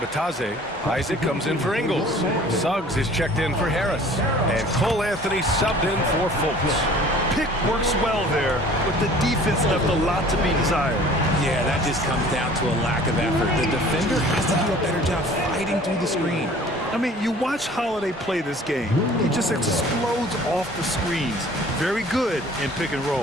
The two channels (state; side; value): normal; both; correlation 0.49